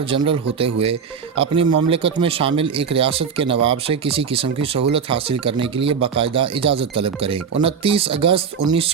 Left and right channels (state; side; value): quieter; left; 6.5 dB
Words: جنرل ہوتے ہوئے اپنی مملکت میں شامل ایک ریاست کے نواب سے کسی قسم کی سہولت حاصل کرنے کے لیے باقاعدہ اجازت طلب کریں۔ 29 اگست